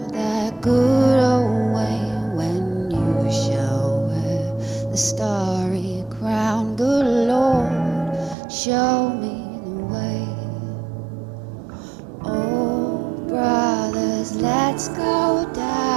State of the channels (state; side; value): drops out; left; at 8.3 s